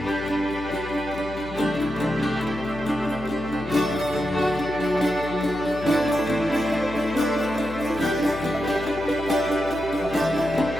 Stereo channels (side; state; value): left; noise; hum, 13 dB below the sound